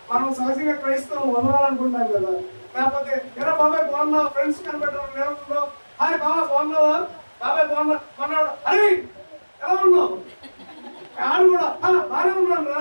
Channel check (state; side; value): inverted; both; correlation -1.00